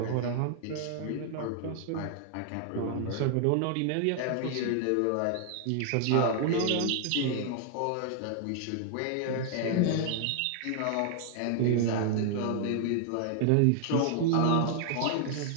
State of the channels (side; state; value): both; different; correlation 0.00